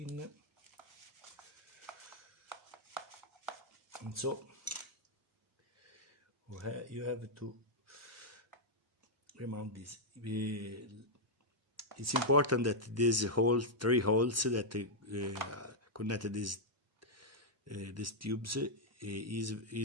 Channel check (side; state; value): both; normal; correlation -0.05